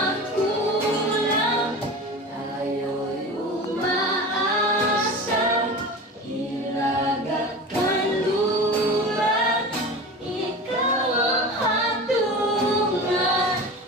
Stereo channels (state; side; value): normal; both; correlation 0.32